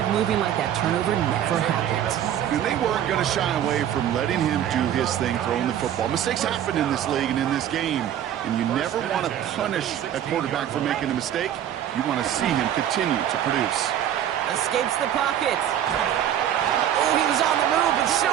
moving like that turnover never happened. And they weren't going to shy away from letting him do his thing, throwing the football. Mistakes happen in this league and in this game. And you never want to punish a quarterback for making a mistake. You want to see him continue to produce. Escapes the pocket. Oh, he was on the move, but so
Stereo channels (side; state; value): left; quieter; 10.6 dB